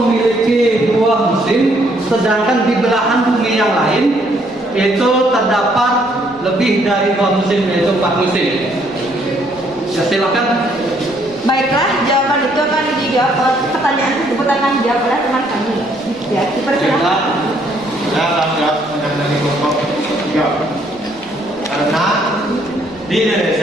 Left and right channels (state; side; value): noise; right; rumble, 27 dB below the sound